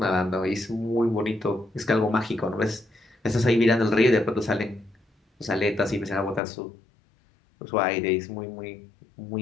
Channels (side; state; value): right; drops out; at 6.4 s